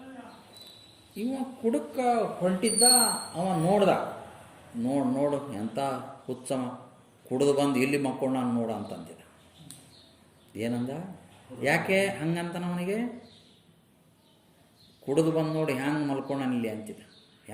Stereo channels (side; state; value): both; identical; correlation 1.00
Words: ಇವ ಕುಡುಕ ಹೊಂಟಿದ್ದ. ಅವ ನೋಡ್ದ, ನೋಡು ಎಂಥ ಹುಚ್ಚಮ, ಕುಡಿದು ಬಂದು ಇಲ್ಲಿ ಮಕ್ಕೊಂಡು ನಾನು ನೋಡ ಅಂತಂದಿದ್ದ. ಏನಂದ? ಯಾಕೆ ಹಂಗಂತ ಅವನಿಗೆ? ಕುಡಿದು ಬಂದು ನೋಡಿ ಹ್ಯಾಂಗೆ ಮಲ್ಕೊಂಡಾನ ಇಲ್ಲಿ ಅಂತಿದ್ದ,